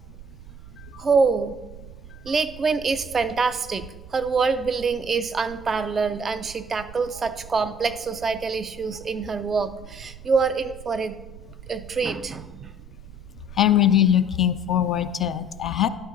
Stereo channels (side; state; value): right; noise; rumble, 17 dB below the sound